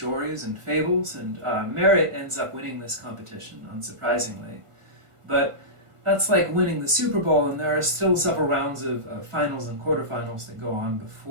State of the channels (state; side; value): late; left; 1.5 ms